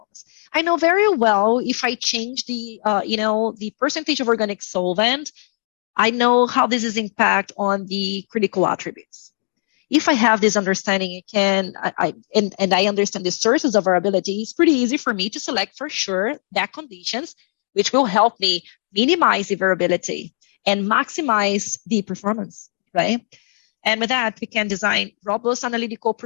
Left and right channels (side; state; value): right; silent; digital silence